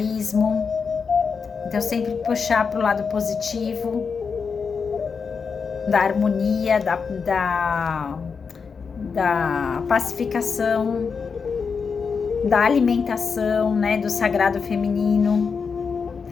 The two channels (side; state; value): right; quieter; 5.6 dB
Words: Então sempre puxar para o lado positivo, da harmonia, da pacificação, da alimentação, né, do sagrado feminino,